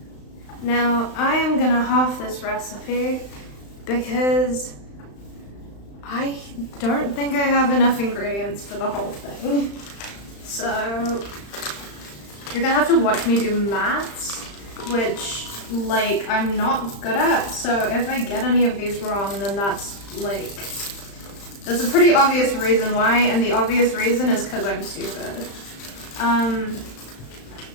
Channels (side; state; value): right; late; 35 ms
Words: Now, I am gonna half this recipe because I don't think I have enough ingredients for the whole thing. So, you're gonna have to watch me do maths, which, like, I'm not good at. So if I get any of these wrong, then that's, like, there's a pretty obvious reason why, and the obvious reason is because I'm stupid.